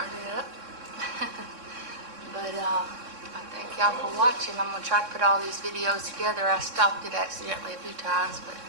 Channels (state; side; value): late; left; 3.6 ms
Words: it up. But I thank y'all for watching. I'm going to try to put all these videos together. I stopped it accidentally a few times, but